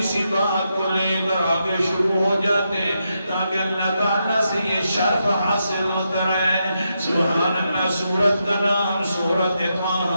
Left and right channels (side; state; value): both; inverted; correlation -0.84